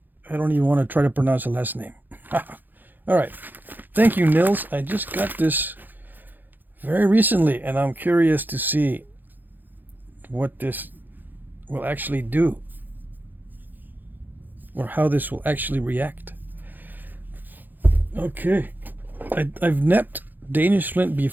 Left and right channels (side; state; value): left; late; 0.087 ms